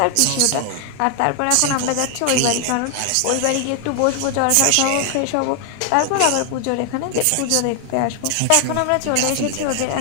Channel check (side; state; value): both; different; correlation 0.00